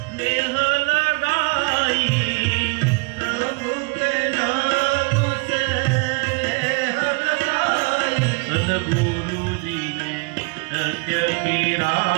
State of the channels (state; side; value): quieter; left; 32.2 dB